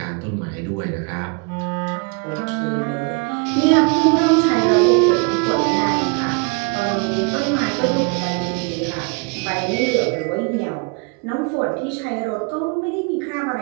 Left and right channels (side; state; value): left; quieter; 32.1 dB